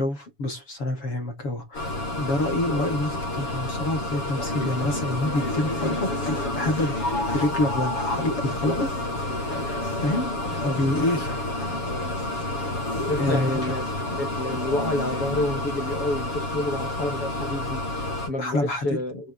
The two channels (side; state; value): right; late; 7.1 ms